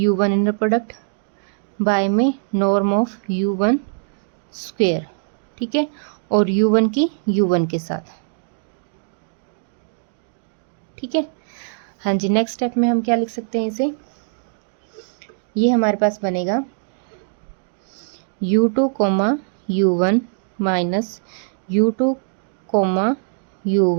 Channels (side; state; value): left; silent; digital silence